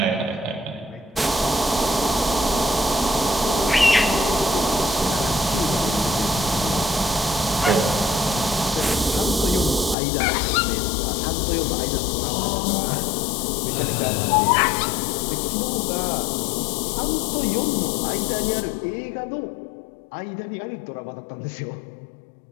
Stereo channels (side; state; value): right; drops out; at 10.0 s